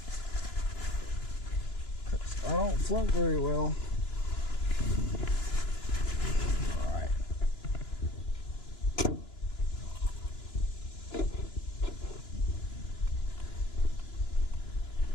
Because I don't float very well. Alright.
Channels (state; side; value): late; right; 2.9 ms